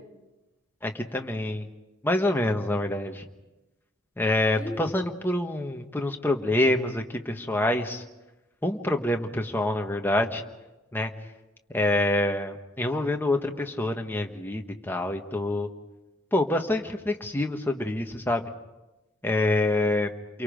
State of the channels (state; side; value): normal; both; correlation 0.69